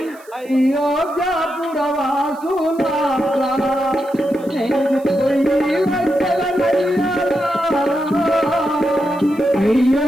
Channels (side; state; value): right; noise; hiss, 26 dB below the sound